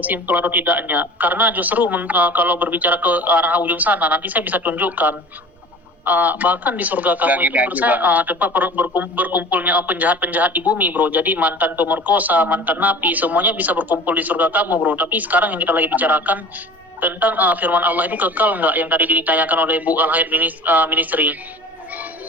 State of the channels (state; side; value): normal; both; correlation 0.41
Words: simpel atau tidaknya. Karena justru kalau berbicara ke arah ujung sana, nanti saya bisa tunjukkan. Bahkan di surga kamu itu gini menurut aja, saya tempat berkumpulnya penjahat-penjahat di bumi bro. Jadi mantan pemerkosa, mantan napi, semuanya bisa berkumpul di surga kamu bro. Tapi sekarang yang kita lagi bicarakan tentang firman Allah itu kekal nggak, yang tadi ditanyakan oleh Bu Al-Hayat Ministry.